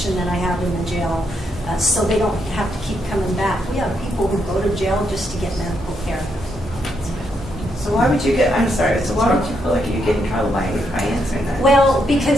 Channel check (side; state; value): both; normal; correlation 0.78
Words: that I have in the jail, so they don't have to keep coming back. We have people who go to jail just to get medical care. So why would you I'm sorry, so why would you feel like you get in trouble by answering that? Well,